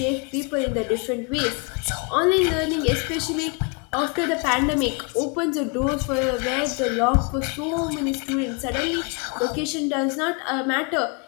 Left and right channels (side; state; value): right; quieter; 33.8 dB